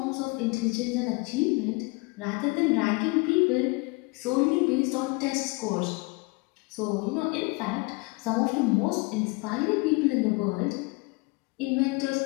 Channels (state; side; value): quieter; right; 27.2 dB